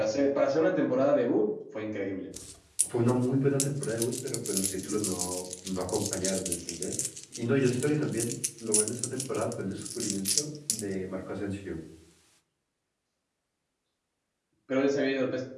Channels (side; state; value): both; identical; correlation 1.00